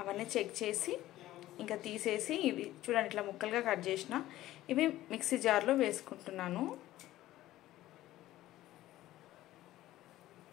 అవన్నీ చెక్ చేసి ఇంకా తీసేసి ఇవి చూడండి ఇట్లా ముక్కలుగా కట్ చేసిన ఇవి మిక్సీ జార్లో వేసుకుంటున్నాను.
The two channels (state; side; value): quieter; right; 15.1 dB